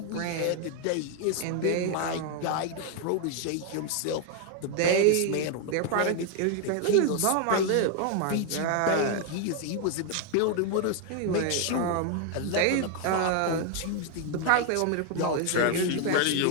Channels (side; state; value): both; different; correlation 0.00